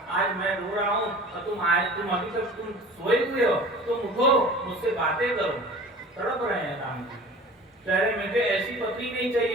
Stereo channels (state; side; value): normal; both; correlation 0.41